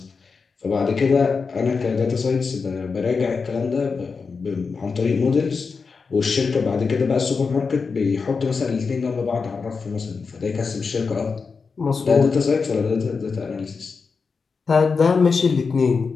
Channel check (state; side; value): quieter; right; 4.9 dB